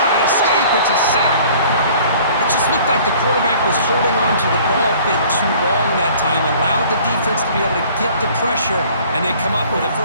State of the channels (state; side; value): inverted; both; correlation -0.52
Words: escape. It's a sack. It just looked like the quarterback was holding on to the ball a bit too long that time, allowed the defense to be able to get the pressure, and they come up with the